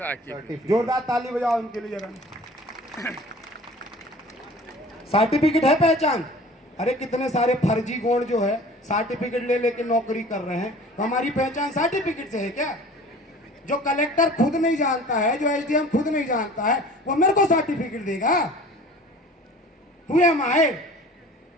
जोरदार ताली बजाओ इनके लिए जरा। सर्टिफिकेट है पहचान। अरे कितने सारे फर्जी गौंड जो है सर्टिफिकेट ले लेके नौकरी कर रहे हैं। तो हमारी पहचान सर्टिफिकेट से है क्या? जो कलेक्टर खुद नहीं जानता है, जो एसडीएम खुद नहीं जानता है, वो मेरे को सर्टिफिकेट देगा? Who am I?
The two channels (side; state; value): both; normal; correlation 0.44